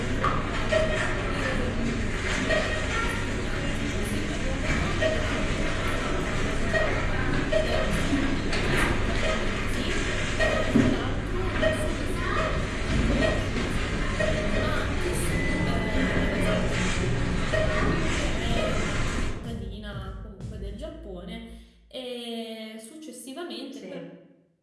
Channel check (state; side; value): identical; both; correlation 1.00